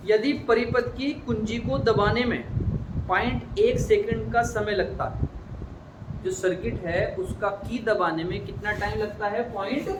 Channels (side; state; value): both; identical; correlation 1.00